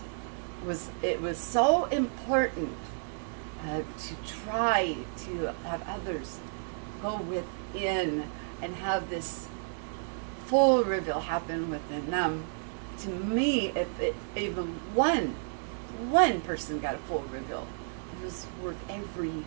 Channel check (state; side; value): silent; left; digital silence